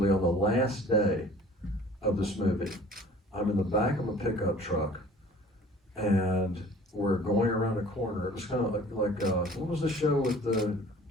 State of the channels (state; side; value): normal; both; correlation 0.48